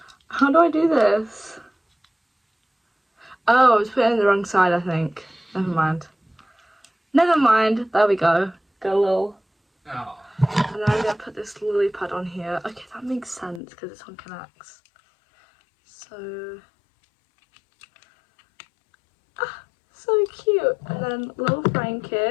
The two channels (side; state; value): right; drops out; at 13.6 s